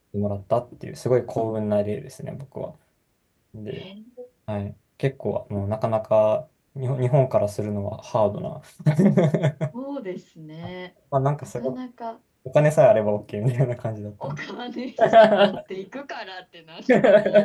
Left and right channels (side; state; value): both; identical; correlation 1.00